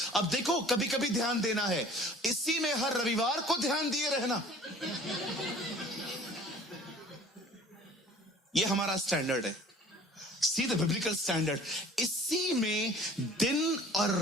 अब देखो, कभी कभी ध्यान देना है, इसी में हर रविवार को ध्यान दिए रहना। ये हमारा स्टैंडर्ड है। See the biblical standard. इसी में दिन और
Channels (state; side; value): normal; both; correlation 0.48